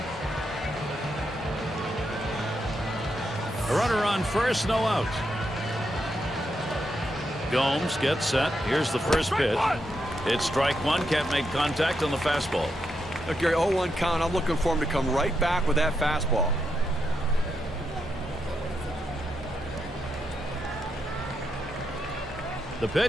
A runner on first, no out. Gomes gets set. Here's the first pitch. It's strike 1. Can't make contact on the fastball. Look, Gary, 0-1 count. I'm looking for him to come right back with that fastball. The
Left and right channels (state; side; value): normal; both; correlation 0.82